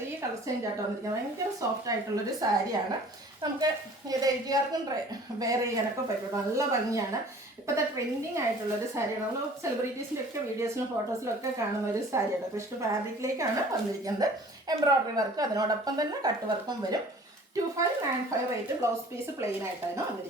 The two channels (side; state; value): both; normal; correlation 0.49